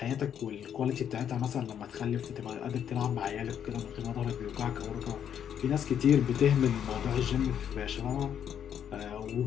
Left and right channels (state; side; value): quieter; right; 9.0 dB